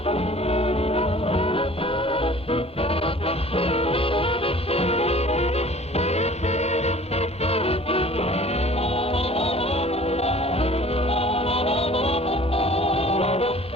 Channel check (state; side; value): normal; both; correlation 0.48